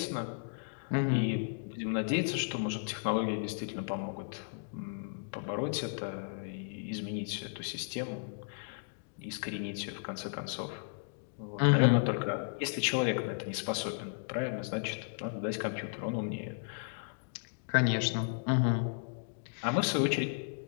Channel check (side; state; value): right; silent; digital silence